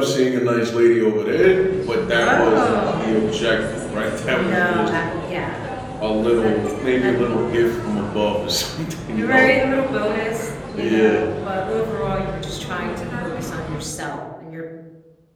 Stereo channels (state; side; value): identical; both; correlation 1.00